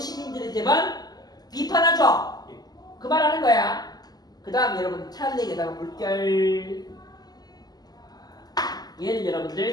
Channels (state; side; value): late; right; 0.19 ms